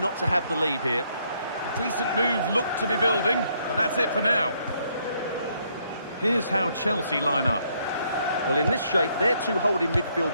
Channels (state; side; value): inverted; both; correlation -0.71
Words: to have the lead here. A decent move looked to be building, but that's it for now. Here's how Chelsea line up. Well, in this shape, their two holding midfield